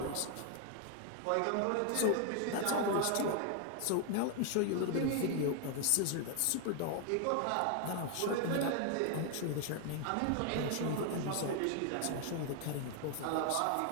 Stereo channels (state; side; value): different; both; correlation 0.00